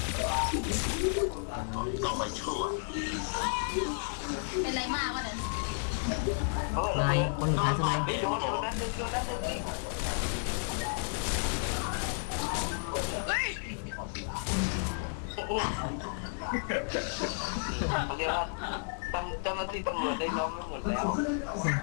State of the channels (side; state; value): right; silent; digital silence